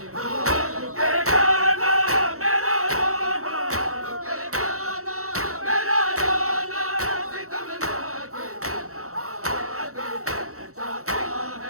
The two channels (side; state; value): left; late; 0.64 ms